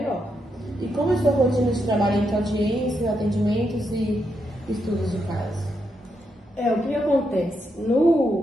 E como é a sua rotina de trabalho entre audiências, atendimentos e estudos de caso? O que acontece?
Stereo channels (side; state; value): both; normal; correlation 0.81